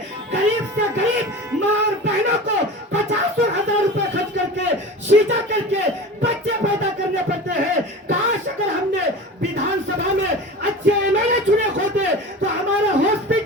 गरीब से गरीब माँ और बहनों को 50,000 रुपए खर्च करके सीधा करके बच्चे पैदा करने पड़ते हैं। काश अगर हमने विधानसभा में अच्छे एमएलए चुने होते तो हमारा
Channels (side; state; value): both; normal; correlation 0.34